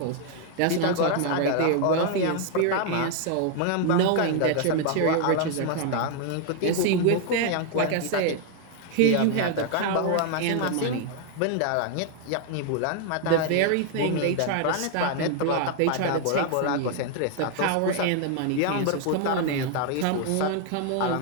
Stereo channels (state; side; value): different; both; correlation 0.00